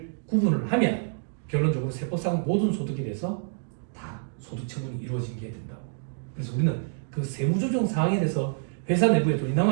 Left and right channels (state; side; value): silent; left; digital silence